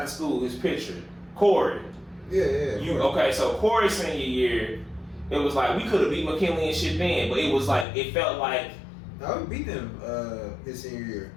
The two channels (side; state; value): right; drops out; at 7.9 s